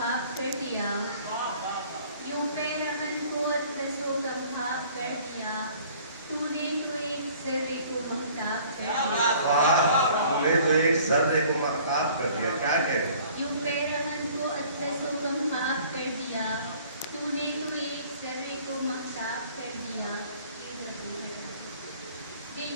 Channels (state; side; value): inverted; both; correlation -0.53